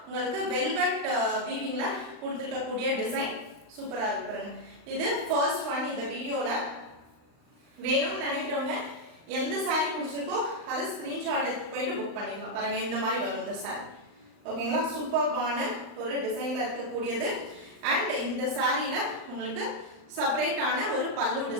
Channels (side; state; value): left; late; 39 ms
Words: உங்களுக்கு வெல்வெட் வீவிங்கில் கொடுத்துருக்கக்கூடிய டிசைன் சூப்பராக இருக்கு பாருங்க. இது ஃபர்ஸ்ட் ஒன் இந்த வீடியோவில். வேணும்னு நினைக்கிறவங்க எந்த சாரீ பிடிச்சிருக்கோ அதை ஸ்க்ரீன்ஷாட் எடுத்து போயிட்டு புக் பண்ணிக்கலாம். பாருங்கள், இந்த மாதிரி வரும் இந்த சாரீ. ஓகேங்களா, சூப்பர்பான ஒரு டிசைனில் இருக்கக்கூடியது. அண்ட் இந்த சாரியில் உங்களுக்கு செப்பரேட்டான ஒரு பல்லு